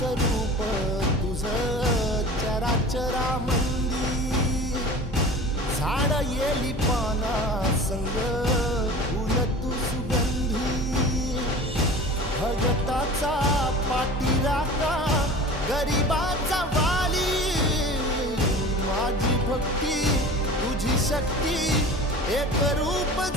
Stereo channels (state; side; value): normal; both; correlation 0.38